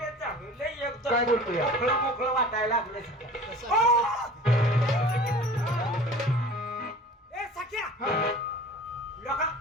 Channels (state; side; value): normal; both; correlation 0.43